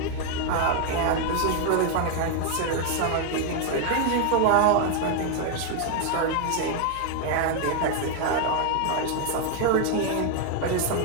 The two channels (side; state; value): both; different; correlation 0.01